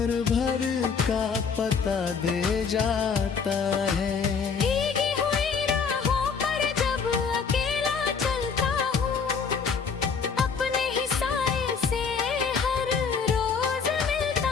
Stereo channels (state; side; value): quieter; right; 5.8 dB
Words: भर का पता दे जाता है। भीगी हुई राहों पर जब अकेला चलता हूँ, अपने ही साए से हर रोज